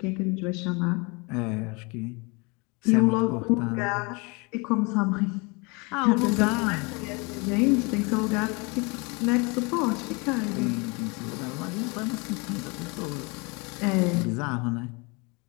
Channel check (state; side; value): quieter; right; 29.0 dB